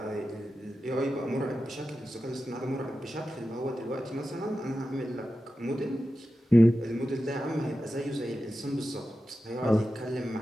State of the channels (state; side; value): normal; both; correlation 0.92